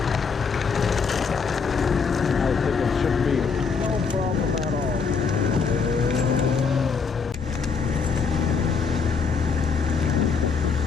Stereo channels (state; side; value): quieter; right; 5.5 dB